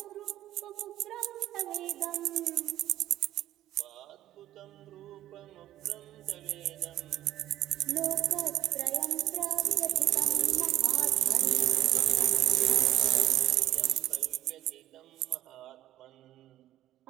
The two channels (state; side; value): quieter; left; 13.4 dB